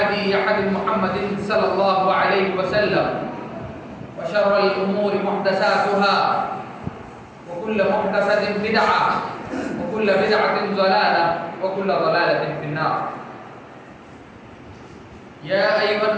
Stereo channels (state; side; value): identical; both; correlation 1.00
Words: هدي محمد صلى الله عليه وسلم وشر الأمور محدثاتها وكل محدثة بدعة وكل بدعة ضلالة وكل ضلالة في النار. يا أيها